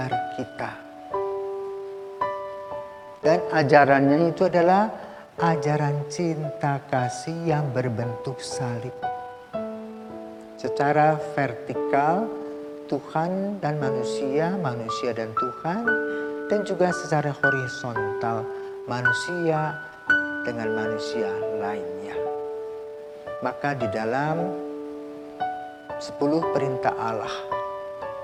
kita. Dan ajarannya itu adalah ajaran cinta kasih yang berbentuk salib. Secara vertikal, Tuhan dan manusia, manusia dan Tuhan, dan juga secara horizontal manusia dengan manusia lainnya. Maka di dalam 10 perintah Allah,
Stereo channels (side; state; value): both; identical; correlation 1.00